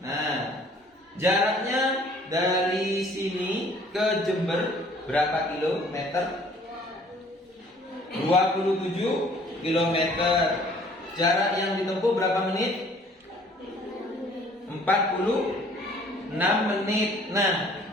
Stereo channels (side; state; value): both; normal; correlation 0.56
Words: Nah, jaraknya dari sini ke Jember berapa kilometer? 27 kilometer. Jarak yang ditempuh berapa menit? 46 menit. Nah,